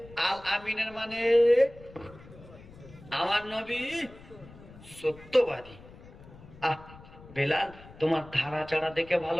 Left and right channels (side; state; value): left; noise; rumble, 20 dB below the sound